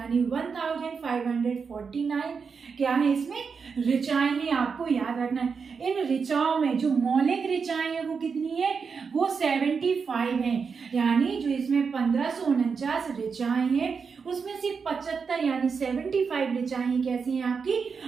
1549 क्या है इसमें ऋचाएं हैं, आपको याद रखना है। इन ऋचाओं में जो मौलिक ऋचाएं हैं वो कितनी है, वो 75 हैं, यानी जो इसमें 1549 ऋचाएं हैं उसमें से 75 यानी 75 ऋचाएं कैसी हैं, आपकी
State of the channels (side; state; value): left; quieter; 5.6 dB